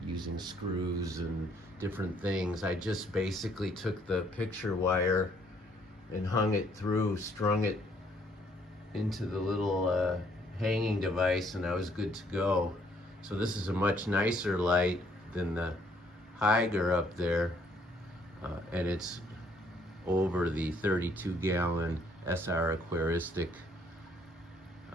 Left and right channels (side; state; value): both; normal; correlation 0.66